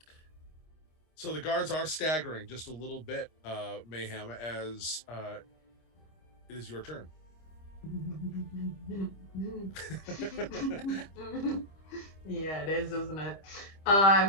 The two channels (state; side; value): late; right; 25 ms